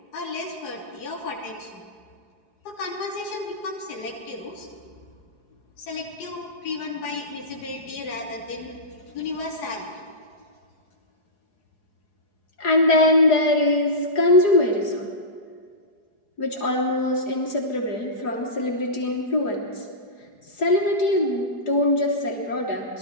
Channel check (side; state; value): right; late; 4.8 ms